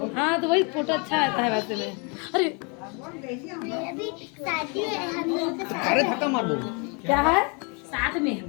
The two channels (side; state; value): right; quieter; 33.3 dB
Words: हाँ तो वही फोटो अच्छा आता है वैसे में. अरे अरे धक्का मार दो. क्या है साथ में